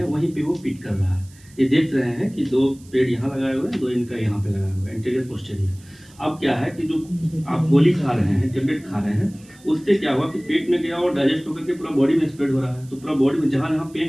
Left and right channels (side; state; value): right; noise; hiss, 26 dB below the sound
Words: वहीं पे वो पिट कर रहा है। ये देख रहे हैं कि 2 पेड़ यहाँ लगाए हुए हैं, 2 इनका यहाँ पे लगाया हुआ है, इंटीरियर पोस्टीरियर। अब क्या है कि जो आप गोली खा रहे हैं, टेबलेट खा रहे हैं, उससे क्या हुआ कि पेट में गया और डाइजेस्ट होकर के पूरा बॉडी में स्प्रेड हो रहा है। तो पूरा बॉडी में जहाँ जहाँ